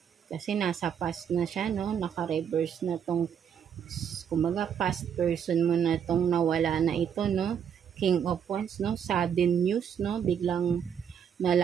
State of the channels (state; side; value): quieter; left; 8.2 dB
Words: Kasi nasa past na siya, no. Naka-reverse na tong, kumbaga, past person mo na tong nawala na ito, no. King of Wands, no? Sudden news, no? Biglang